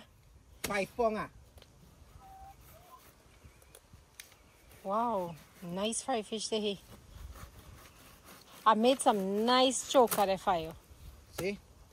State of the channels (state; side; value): identical; both; correlation 1.00